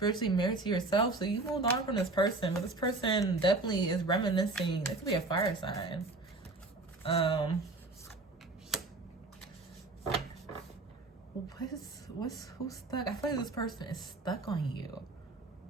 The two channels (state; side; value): quieter; left; 3.3 dB